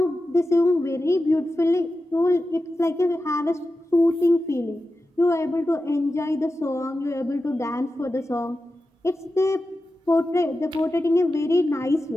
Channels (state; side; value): normal; both; correlation 0.92